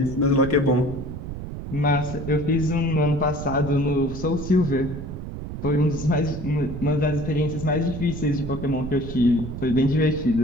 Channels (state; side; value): noise; right; rumble, 8 dB below the sound